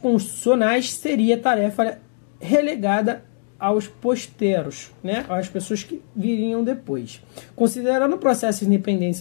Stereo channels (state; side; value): silent; right; digital silence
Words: seria tarefa relegada aos posteros, né, às pessoas que viriam depois. Considerando o processo de